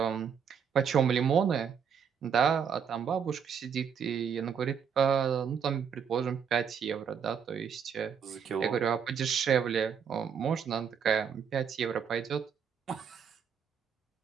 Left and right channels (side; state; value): left; quieter; 7.2 dB